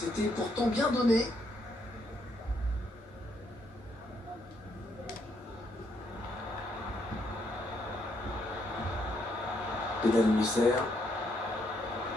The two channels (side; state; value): both; normal; correlation 0.74